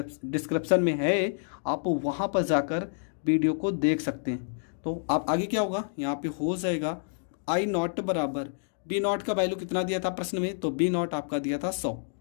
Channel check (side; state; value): right; silent; digital silence